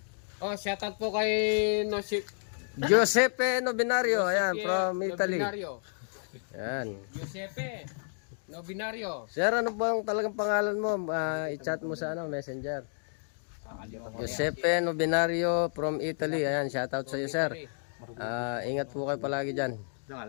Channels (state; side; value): silent; right; digital silence